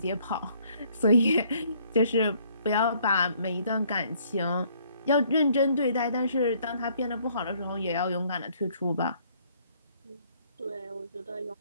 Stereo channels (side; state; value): both; inverted; correlation -0.64